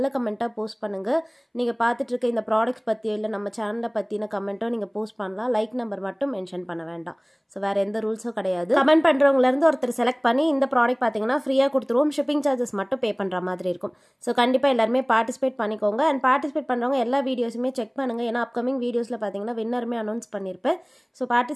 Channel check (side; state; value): both; identical; correlation 1.00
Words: கமெண்ட்டாக போஸ்ட் பண்ணுங்கள். நீங்கள் பார்த்துட்டு இருக்க இந்த ப்ராடக்ட்ஸ் பற்றியோ இல்லை நம்ம சேனலை பற்றின கமெண்ட்டோ நீங்கள் போஸ்ட் பண்ணலாம். லைக் நம்பர் மட்டும் மென்ஷன் பண்ண வேண்டாம். ஸோ வேறு எந்த ரூல்ஸும் கிடையாது. கமெண்ட் பண்ணுறவங்கலேருந்து ஒருத்தர் செலக்ட் பண்ணி இந்த ப்ராடக்ட் பார்த்தீங்கன்னா ஃப்ரீயாக கொடுத்துருவோம். ஷிப்பிங் சார்ஜஸ் மட்டும் பே பண்ணுற மாதிரி இருக்கும். ஸோ கண்டிப்பாக எல்லாருமே பார்ட்டிசிபேட் பண்ணிக்கோங்க. அண்ட் பார்ட்டிசிபேட் பண்ணுறவங்க எல்லா வீடியோஸுமே செக் பண்ணுங்கள். ஏன்னா அப்கமிங் வீடியோஸில் பார்த்தீங்கன்னா வின்னருமே அனௌன்ஸ் பண்ணியிருப்பேன். ஸோ